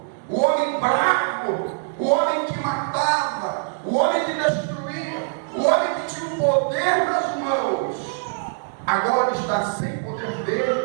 o homem bravo, o homem que matava, o homem que destruía, o homem que tinha o poder nas mãos, agora está sem poder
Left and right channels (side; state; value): left; silent; digital silence